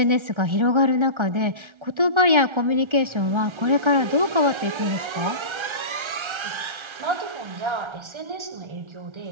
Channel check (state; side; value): late; left; 1.3 ms